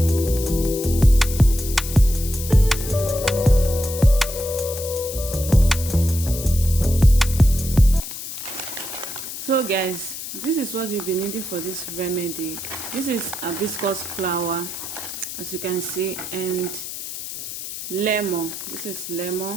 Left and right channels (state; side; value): noise; left; hiss, 8 dB below the sound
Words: So guys, this is what you'll be needing for this remedy. This is hibiscus flower, as you can see, and lemon. This is